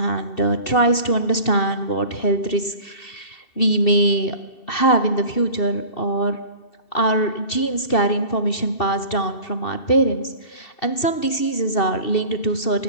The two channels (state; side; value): late; right; 2.7 ms